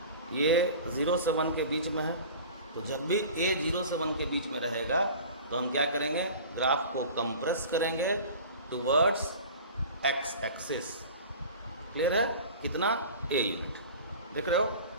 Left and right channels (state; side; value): inverted; both; correlation -0.39